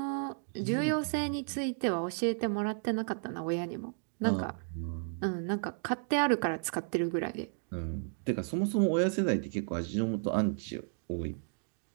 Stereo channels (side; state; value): left; silent; digital silence